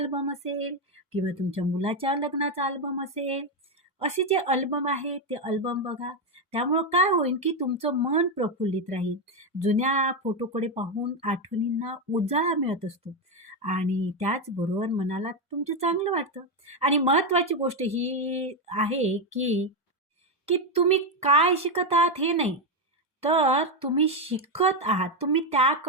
असेल किंवा तुमच्या मुलाच्या लग्नाचा अल्बम असेल. असे जे अल्बम आहे ते अल्बम बघा. त्यामुळं काय होईल की तुमचं मन प्रफुल्लित राहील. जुन्या फोटोकडे पाहून आठवणींना उजाळा मिळत असतो आणि त्याचबरोबर मनाला तुमचं चांगलं वाटतं. आणि महत्त्वाची गोष्ट ही आहे की की तुम्ही काय शिकत आहात हे नाही, तर तुम्ही शिकत आहात. तुम्ही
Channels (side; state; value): both; normal; correlation 0.07